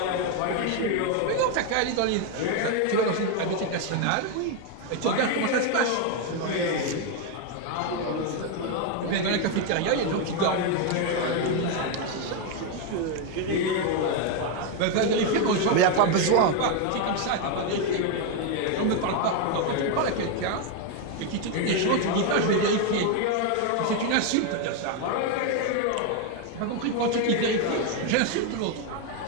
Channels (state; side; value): different; both; correlation 0.02